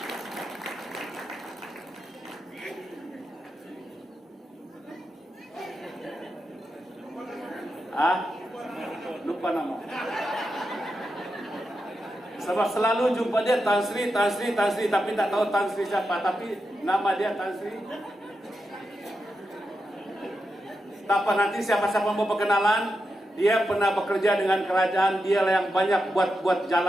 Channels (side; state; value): both; normal; correlation 0.87